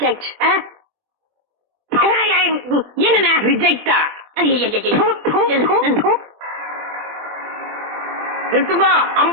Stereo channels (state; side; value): late; left; 24 ms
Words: என்னண்ணா ரிஜெக்டா? நிறுத்துங்கோ,